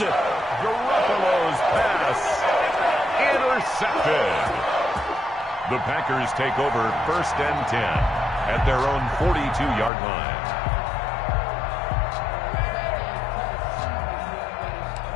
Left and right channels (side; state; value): right; drops out; at 9.9 s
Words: Garoppolo's pass intercepted. The Packers take over 1st and 10 at their own 42-yard line.